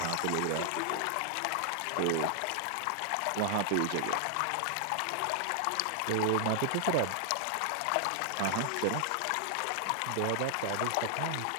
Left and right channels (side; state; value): both; different; correlation 0.00